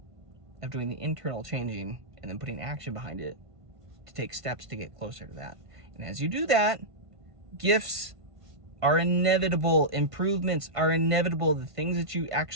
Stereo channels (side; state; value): left; late; 1.5 ms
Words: of doing the internal changing and then putting action behind it to take steps to get closer to that. And as you do that, gifts are inevitable, improvements are inevitable, the things that you